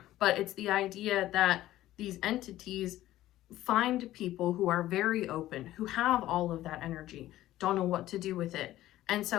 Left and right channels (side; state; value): right; quieter; 14.7 dB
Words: but it's the idea that these entities find people who are very open, who have all of that energy, don't know what to do with it. And